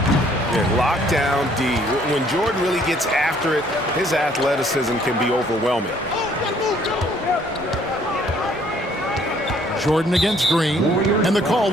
Yeah, lockdown D. When Jordan really gets after it, his athleticism can be overwhelming. Jordan against Green, and the call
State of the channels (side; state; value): both; normal; correlation 0.62